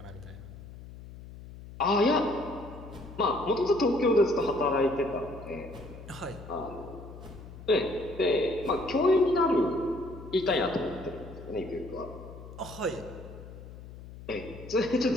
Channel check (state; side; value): noise; left; hum, 15 dB below the sound